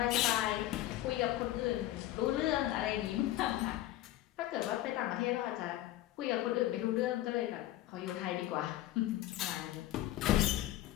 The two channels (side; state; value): right; quieter; 14.7 dB